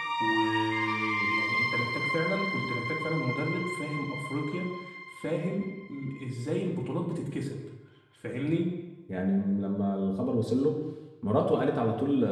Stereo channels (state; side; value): identical; both; correlation 1.00